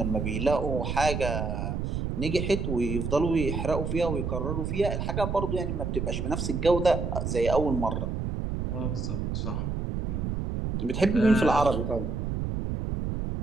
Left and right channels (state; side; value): noise; right; rumble, 2 dB below the sound